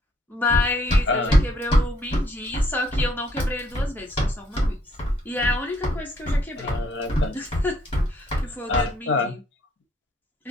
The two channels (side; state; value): both; normal; correlation 0.67